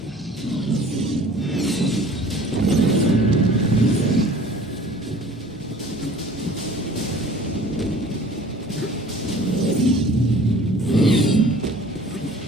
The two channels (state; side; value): normal; both; correlation 0.48